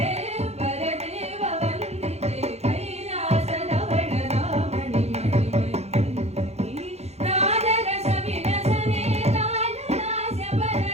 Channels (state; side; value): late; left; 0.31 ms